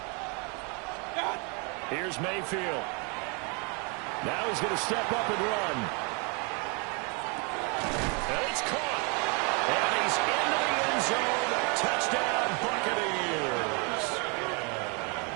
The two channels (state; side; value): quieter; left; 33.8 dB